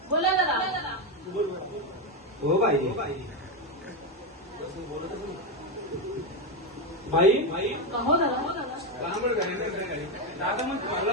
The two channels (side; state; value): both; normal; correlation 0.09